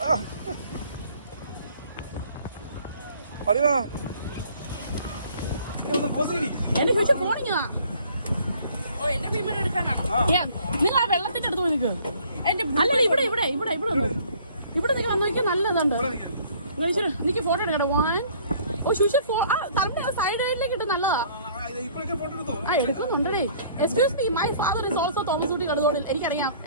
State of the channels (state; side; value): inverted; both; correlation -0.56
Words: Arima. എന്റെ ഫ്യൂച്ചർ ഫോണിങ്ങാ. ഓ എന്റെ മീൻ എടുക്കാനാണോ? നിങ്ങൾ ആ വെള്ളത്തിന്റെ അടുത്ത് പോയി നിൽക്ക്. അല്ല ഇവിടെ വന്നു. ഇവിടെ നിങ്ങൾ വന്നു നോക്കിയാൽ നല്ലതുണ്ട്. എനിക്ക് ഫോട്ടോ എടുക്കട്ടെ. ഓ ശുശി തറന്റെ സൈഡിലേക്ക് ഇട്ട് നല്ലതാ. ആ എടുക്കുന്നുണ്ടേ. Excuse me, my father is also Thomas Kutty Kaduthodil. എനിക്കറിയാം